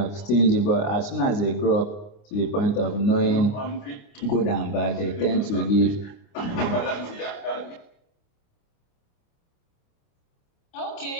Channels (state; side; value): late; right; 29 ms